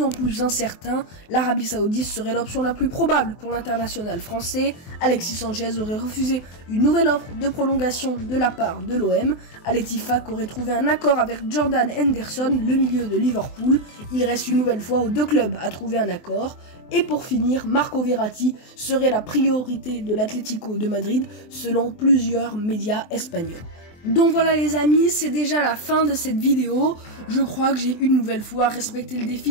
en plus incertain. L'Arabie Saoudite serait l'option la plus probable pour l'international français. Alexis Sanchez aurait refusé une nouvelle offre de prolongation de la part de l'OM. Al Ettifaq aurait trouvé un accord avec Jordan Henderson, le milieu de Liverpool. Il reste une nouvelle fois aux deux clubs à trouver un accord. Et pour finir, Marco Verratti serait la priorité de l'Atlético de Madrid selon plusieurs médias espagnols. Donc voilà les amis, c'est déjà la fin de cette vidéo. Je crois que j'ai une nouvelle fois respecté le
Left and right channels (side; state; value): right; late; 24 ms